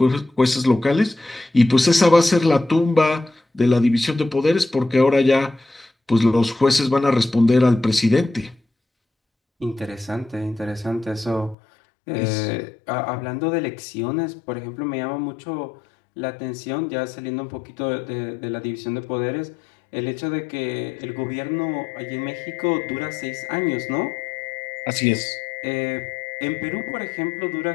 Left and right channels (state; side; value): drops out; right; at 11.6 s